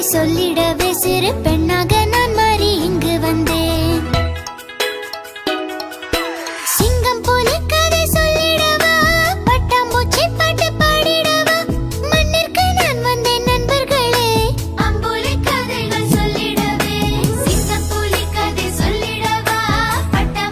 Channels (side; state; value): both; identical; correlation 1.00